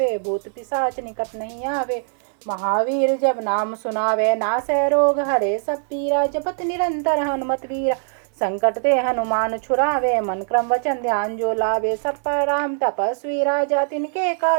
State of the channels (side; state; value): left; silent; digital silence